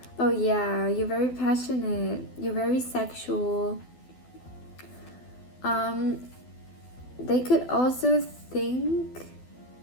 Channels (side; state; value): right; late; 12 ms